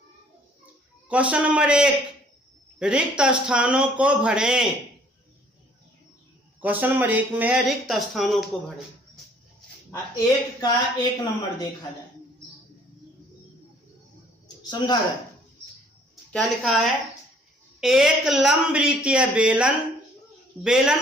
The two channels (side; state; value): both; normal; correlation 0.59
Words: क्वेश्चन नंबर 1, रिक्त स्थानों को भरें। क्वेश्चन नंबर 1 में है रिक्त स्थानों को भरें। 1 का 1 नंबर देखा जाए, समझा जाए। क्या लिखा है? एक लंबवृत्तीय बेलन,